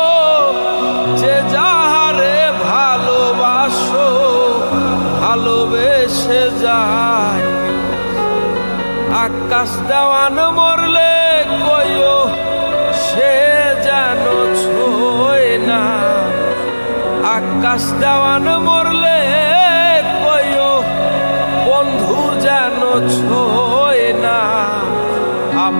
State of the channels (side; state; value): both; inverted; correlation -1.00